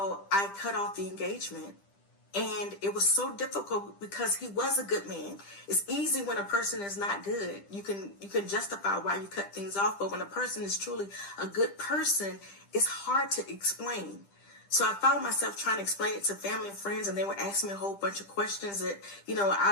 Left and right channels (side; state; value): right; late; 10 ms